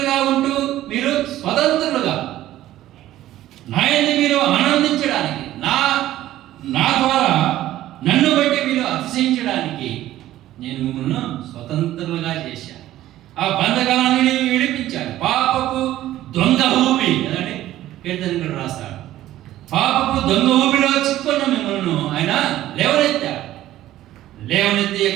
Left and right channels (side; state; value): left; quieter; 14.1 dB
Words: ఉంటూ మీరు స్వతంత్రులుగా నాయన్ని మీరు ఆనందించడానికి, నా ద్వారా నన్ను బట్టి మీరు అతిశయించడానికి నేను మిమ్మల్ని స్వతంత్రులుగా చేశాను. ఆ బంధకాలను విడిపించాను. పాపపు దొంగ ఊపి కదండి, కీర్తనకుడు రాస్తాడు, పాపపు దొంగ ఊపిలో చిక్కున్న మిమ్మల్ని ఆయన లేవనెత్తాడు. లేవనెత్తి